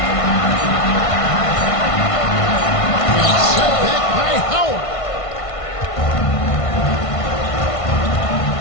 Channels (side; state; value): right; late; 1.5 ms